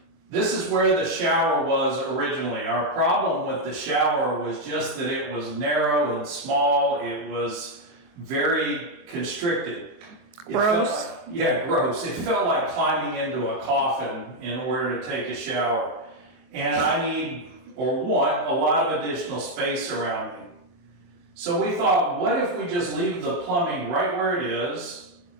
This is where the shower was originally. Our problem with the shower was just that it was narrow and small. It was very constricted. Gross. Gross. It felt like climbing into a coffin in order to take a shower. And I need, or want, a lot of additional space around me. So we thought, what if we just leave the plumbing right where it is,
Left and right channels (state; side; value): late; left; 23 ms